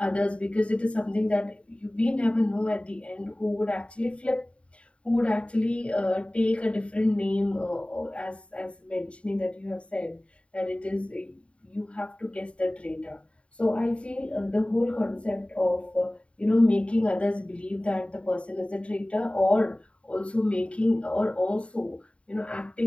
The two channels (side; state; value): right; late; 0.061 ms